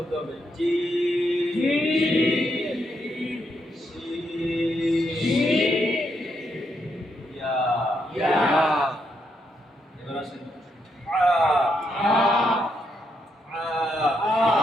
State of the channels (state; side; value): normal; both; correlation 0.79